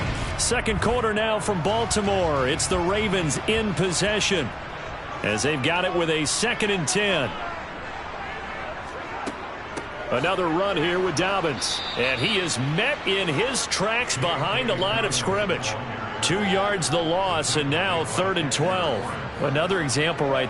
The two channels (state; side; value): identical; both; correlation 1.00